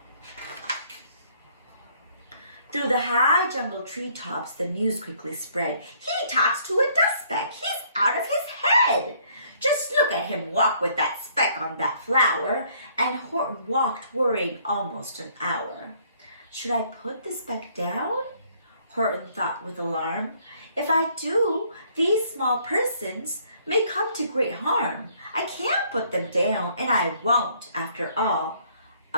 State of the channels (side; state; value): both; inverted; correlation -0.63